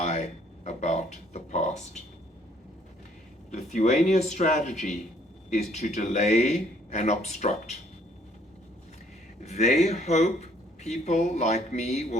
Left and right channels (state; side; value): normal; both; correlation 0.63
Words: about the past. Lithuania's strategy is to delay and obstruct. They hope people like me